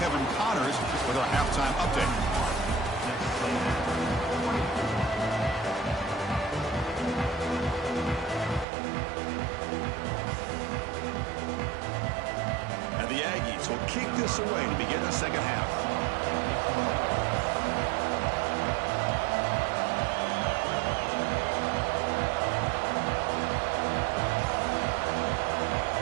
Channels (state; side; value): drops out; left; at 8.7 s